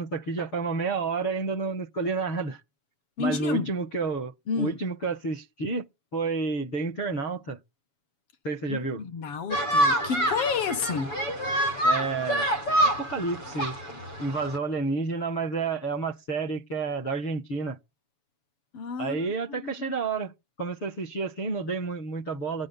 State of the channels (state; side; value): late; right; 7.1 ms